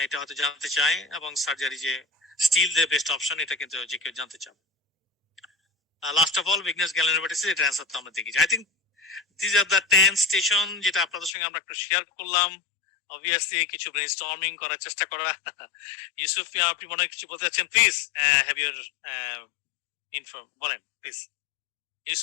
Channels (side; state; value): right; drops out; at 11.3 s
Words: এটা হয়তো জানতে চায়, এবং সার্জারি যে স্টিল দ্য বেস্ট অপশন, এটা কিন্তু যে কেউ জানতে চান। লাস্ট অফ অল উইকনেস গ্যালেনোপ্যাথি, এটা অ্যান্সার তো আমরা দেখেছি। I think this are the 10 station যেটা আপনাদের সঙ্গে আমরা একটু শেয়ার করলাম। অবভিয়াসলি কিছু ব্রেইনস্টর্মিং করার চেষ্টা করা। ইউসুফ, আপনি মনে হয় কিছু বলতে চাচ্ছেন, প্লিজ হ্যাভ ইউর ইনফর্ম, বলেন please.